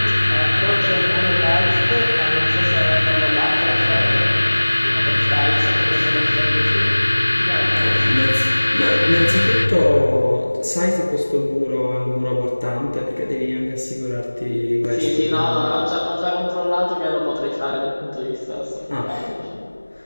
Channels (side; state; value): both; inverted; correlation -1.00